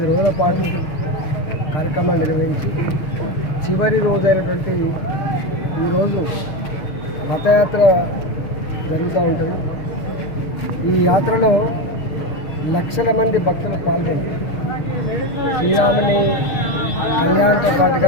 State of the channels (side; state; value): right; late; 6.5 ms